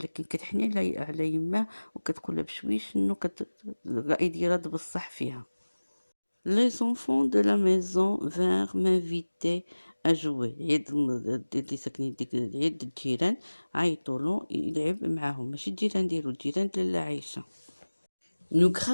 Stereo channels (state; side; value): inverted; both; correlation -1.00